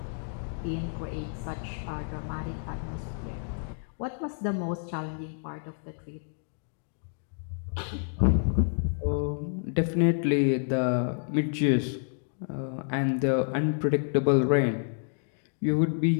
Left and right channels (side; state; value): right; silent; digital silence